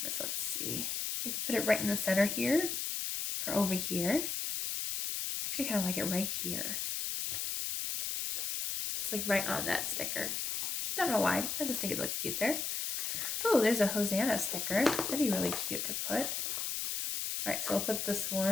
Let's see. We could put it right in the center here or over here. Actually, kind of like it right here. Just like right on that sticker. Don't know why. I just think it looks cute there. Oh, there's a Hosanna sticker. That'd be really cute to put. All right, so I'll put this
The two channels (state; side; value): noise; left; hiss, 1 dB below the sound